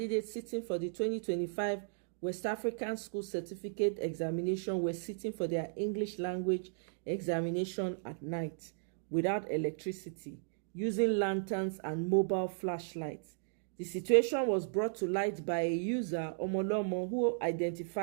sitting for the 2025 West African School Certificate examination were sitting for their English language examination at night without electricity, using lanterns and mobile flashlights. The situation was brought to light by a user, Omolomo, who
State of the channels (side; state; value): left; silent; digital silence